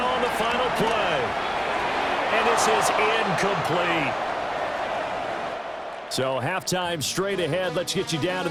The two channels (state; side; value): identical; both; correlation 1.00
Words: on the final play. And this is incomplete. So halftime straight ahead. Let's get you down to